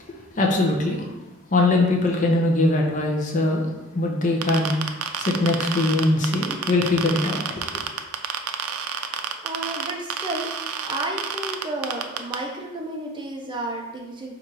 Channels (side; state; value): both; normal; correlation 0.50